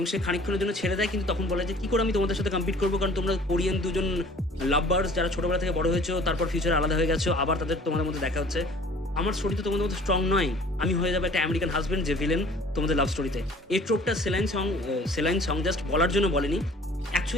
সে খানিকক্ষণের জন্য ছেড়ে দেয়, কিন্তু তখন বলে যে কী করে আমি তোমাদের সাথে কম্পিট করবো, কারণ তোমরা কোরিয়ান দুজন লাভবার্স যারা ছোটোবেলা থেকে বড় হয়েছো, তারপর ফিউচারে আলাদা হয়ে গেছো, আবার তোমাদের মধ্যে দেখা হচ্ছে। আমার স্টোরি তো তোমাদের মধ্যে স্ট্রং নয়, আমি হয়ে যাবে একটা আমেরিকান হাজব্যান্ড যে ভিলেন তোমাদের লাভ স্টোরিতে। এই ট্রোপটা সেলাইন সং জাস্ট বলার জন্য বলেনি,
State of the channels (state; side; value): normal; both; correlation 0.50